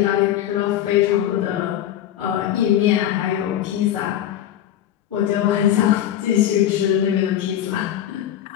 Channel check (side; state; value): right; quieter; 11.4 dB